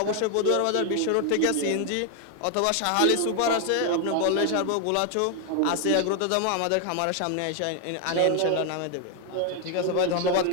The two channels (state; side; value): different; both; correlation 0.01